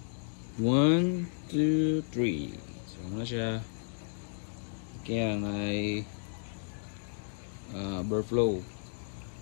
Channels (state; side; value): silent; right; digital silence